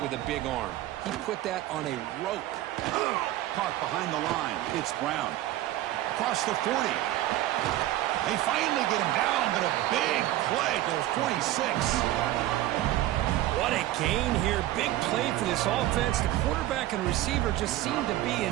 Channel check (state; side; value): quieter; left; 14.9 dB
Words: with a big arm. He put that on a rope. Caught behind the line. It's Brown. Across the 40. They finally get him down, but a big play to the 46. What a gain here. Big play for this offense. The quarterback and receiver just seem to be